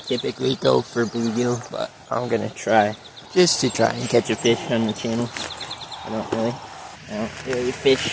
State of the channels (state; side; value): identical; both; correlation 1.00